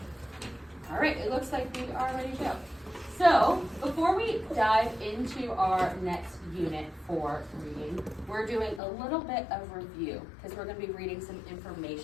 All right, it looks like we are ready to go. So, before we dive into our next unit for reading, we're doing a little bit of review because we're going to be reading some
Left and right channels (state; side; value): drops out; right; at 8.8 s